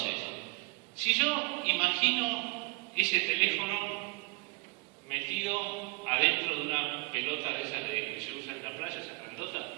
si yo imagino ese teléfono metido adentro de una pelota de esas que se usa en la playa, esa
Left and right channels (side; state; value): left; quieter; 27.7 dB